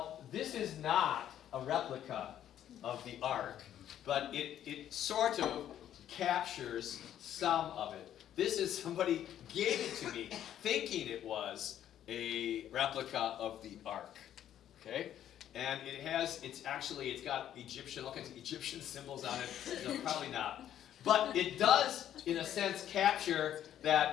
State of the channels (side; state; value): right; quieter; 10.9 dB